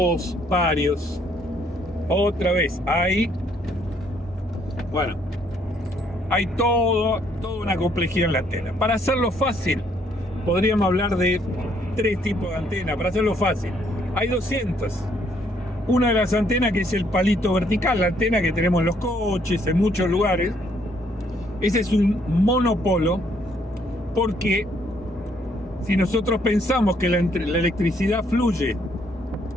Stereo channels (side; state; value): both; normal; correlation 0.68